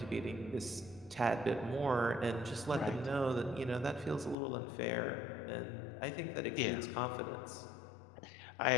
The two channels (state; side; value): drops out; right; at 4.4 s